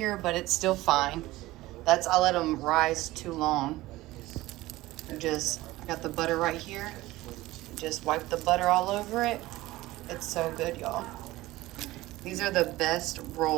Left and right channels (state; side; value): quieter; left; 18.0 dB